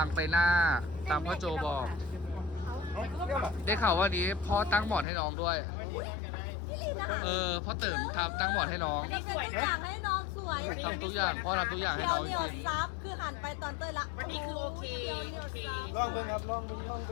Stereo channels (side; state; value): right; drops out; at 5.1 s